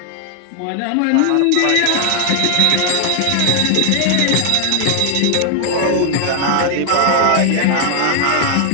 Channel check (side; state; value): both; different; correlation 0.00